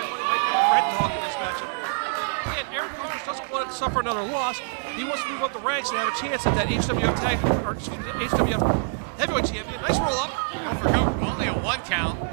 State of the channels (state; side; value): silent; left; digital silence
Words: money might be on Red Dog in this matchup. Again, ARAWN Conners doesn't want to suffer another loss. He wants to move up the ranks and have a chance at that HWF HWF heavyweight champion. Nice roll up. Go for cover, only a 1 count.